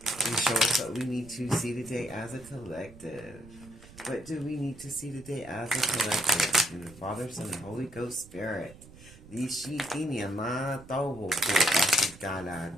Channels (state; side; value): noise; right; rumble, 20 dB below the sound